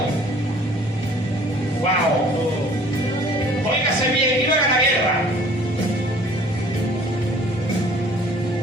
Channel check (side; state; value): both; normal; correlation 0.53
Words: ¡Wow! Óigase bien, iban a la guerra.